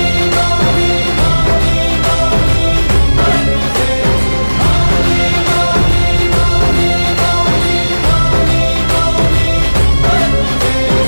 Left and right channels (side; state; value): both; inverted; correlation -1.00